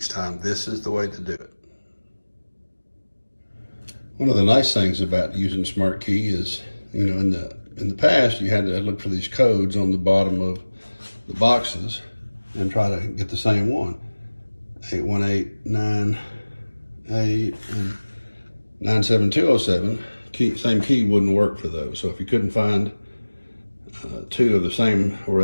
time. This is the way to do it. One of the nice things about using SmartKey is, you know, in the past you had to look for these codes on the bottom of the boxes and try to get the same one. 81898 and 97207. Same key wouldn't work for those. So if you couldn't find two of the same,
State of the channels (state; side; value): inverted; both; correlation -1.00